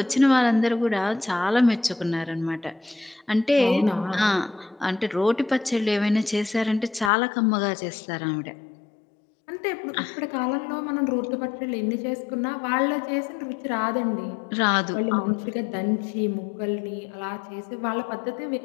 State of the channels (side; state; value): right; drops out; at 7.1 s